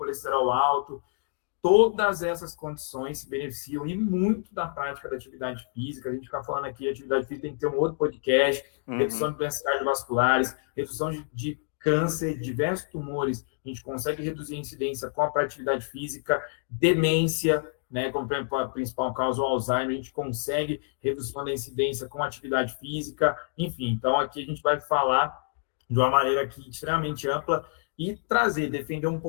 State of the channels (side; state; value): right; silent; digital silence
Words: alto, todas essas condições se beneficiam e muito da prática da atividade física. A gente fica falando aqui, atividade física tem que ter um outro podcast, redução de doenças cardiovasculares, redução de câncer, diversos tumores, a gente consegue reduzir a incidência com a atividade física, demência, né, como a principal causa, o Alzheimer, a gente consegue redução da incidência com atividade física, enfim. Então, aqui a gente vai falar de uma maneira aqui extremamente ampla e trazer, defender um